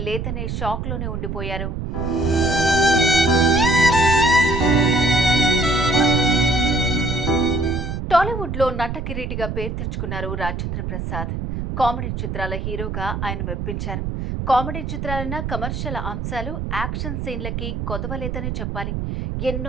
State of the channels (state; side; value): noise; right; rumble, 4 dB below the sound